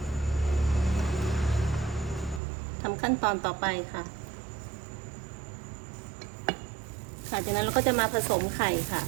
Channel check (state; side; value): drops out; left; at 2.4 s